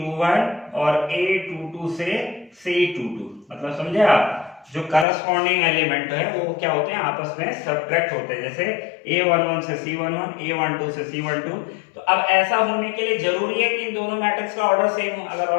और A22 से C22। मतलब समझे आप, जो करस्पॉन्डिंग एलिमेंट है वो क्या होते हैं, आपस में सब्ट्रैक्ट होते हैं। जैसे A11 से C11, A12 से C12। तो अब ऐसा होने के लिए जरूरी है कि इन दोनों मैट्रिक्स का ऑर्डर सेम हो। अगर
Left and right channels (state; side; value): drops out; right; at 5.1 s